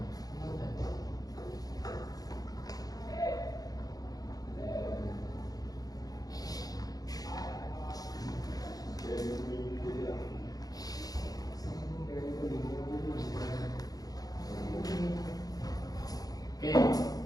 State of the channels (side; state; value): right; late; 0.18 ms